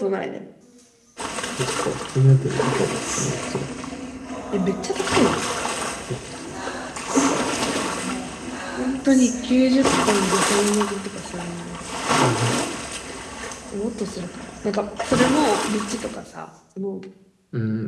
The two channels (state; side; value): identical; both; correlation 1.00